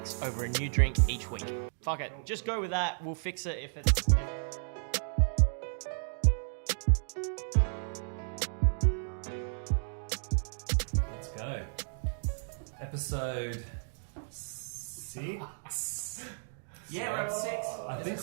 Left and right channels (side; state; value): left; silent; digital silence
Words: over a new drink each week. Fuck it, just go with that. We'll fix it if it's... Let's go. Episode 6. Yeah, we're up to 6. I